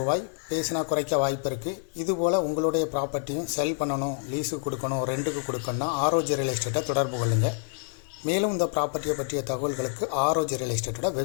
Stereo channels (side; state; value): right; silent; 60 dB below the other